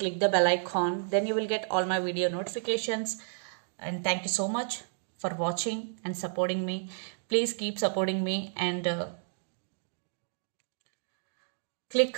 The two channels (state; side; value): silent; left; digital silence